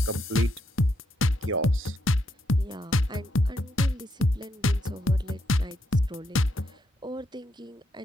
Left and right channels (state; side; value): normal; both; correlation 0.79